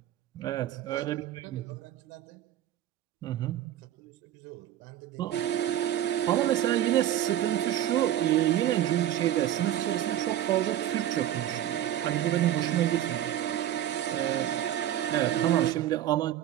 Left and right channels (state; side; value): quieter; left; 11.9 dB